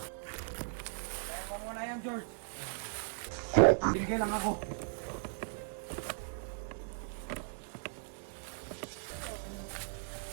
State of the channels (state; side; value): silent; left; digital silence